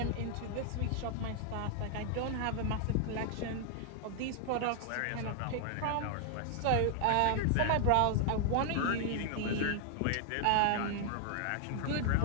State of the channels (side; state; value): both; different; correlation 0.00